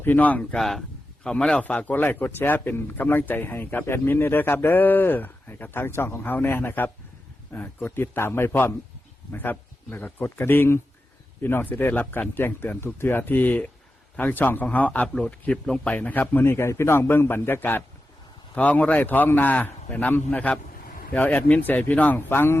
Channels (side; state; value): both; normal; correlation 0.91